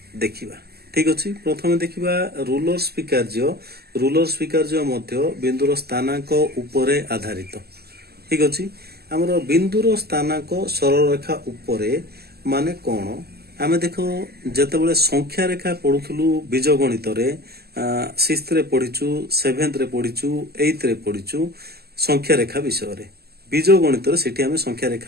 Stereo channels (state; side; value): late; left; 0.46 ms